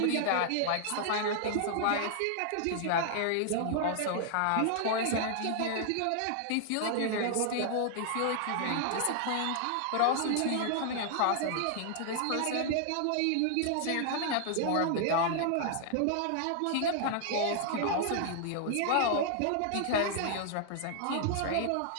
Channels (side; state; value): both; different; correlation -0.01